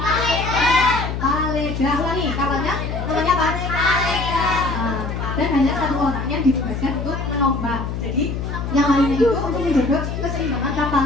Paleda. Ulangi, kapalnya namanya apa? Paleda. Dan hanya satu orang yang ditugaskan untuk menombak. Jadi yang lainnya itu untuk menjaga keseimbangan kapal,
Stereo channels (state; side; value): noise; left; hum, 4 dB below the sound